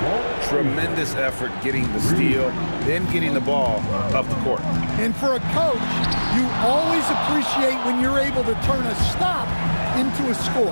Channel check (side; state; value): both; inverted; correlation -1.00